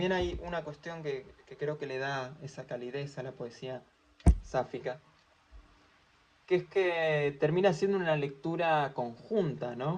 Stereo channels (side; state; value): both; identical; correlation 1.00